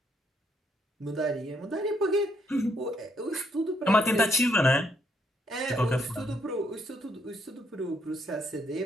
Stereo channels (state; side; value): normal; both; correlation 0.73